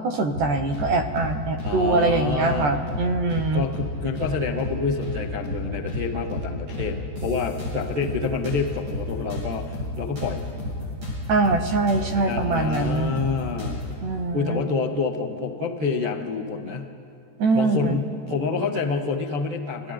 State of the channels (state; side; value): late; left; 14 ms